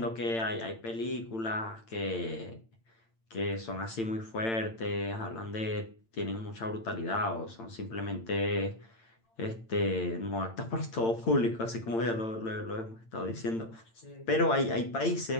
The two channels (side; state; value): right; late; 8.9 ms